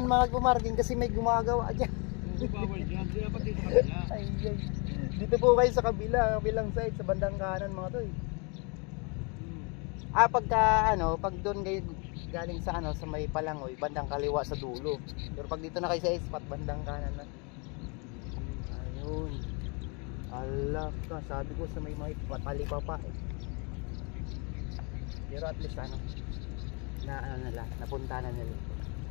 mga pumarking kasi may gumagawa dyan. Oo, bawal dyan. Di dapat dito sa kabila. Ay, ay. Dito po kayo sa kabila, kabilang side, sa bandang kanan mga to eh. Ah, pagka ano, pag doon kayo galing sa ano, sa may Palangoy, bandang kaliwa sa dulo. Pero pag dito na kayo sa spot, bandang kanan na. Ayun. Ala ka, sabi ko sa may patalipa pa eh. Pero at least ano, na ano nila, napunta na nila.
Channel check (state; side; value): quieter; right; 32.8 dB